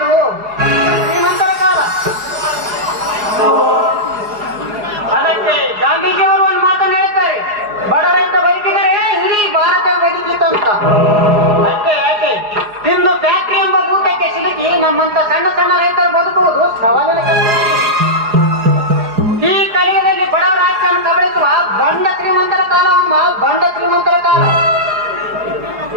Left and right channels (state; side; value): late; left; 4.8 ms